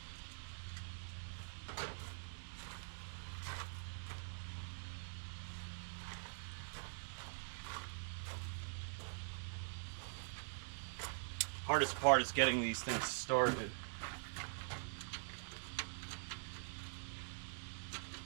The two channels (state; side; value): silent; left; digital silence